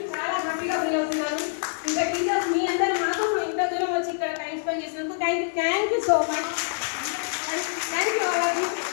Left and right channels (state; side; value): silent; right; 60 dB below the other